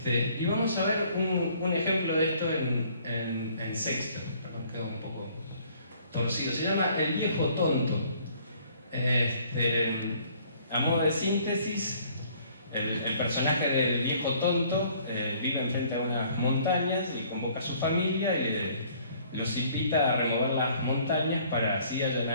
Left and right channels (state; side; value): inverted; both; correlation -0.59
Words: Y vamos a ver un ejemplo de esto en sexto, perdón, quedó un poco torcido, se llama El viejo tonto. A modo de síntesis, el personaje del viejo tonto vive enfrente a unas montañas y convoca a su familia y los invita a remover las montañas para así